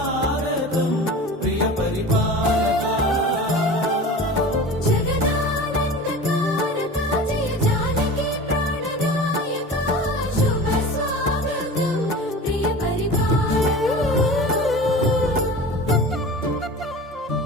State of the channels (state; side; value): normal; both; correlation 0.35